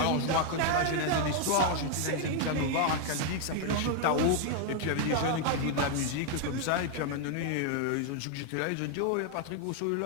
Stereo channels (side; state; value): both; different; correlation 0.00